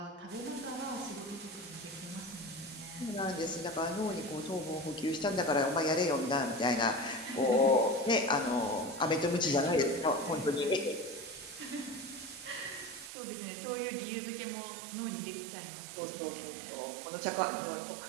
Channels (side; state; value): left; drops out; at 13.1 s